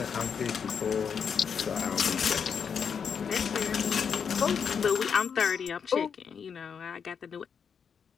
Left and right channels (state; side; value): quieter; right; 6.8 dB